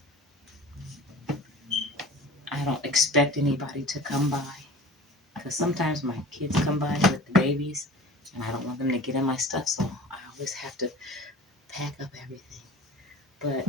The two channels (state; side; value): normal; both; correlation 0.40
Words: I don't expect anybody to come by, because sometimes my kids come by with the babies And I don't want them to get in my stuff, so I always have to pack up everything. But